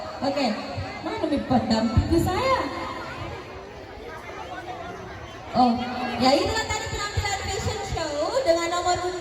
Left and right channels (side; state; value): both; identical; correlation 1.00